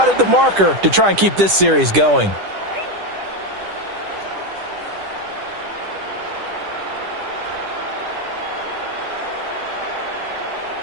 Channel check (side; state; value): left; late; 10 ms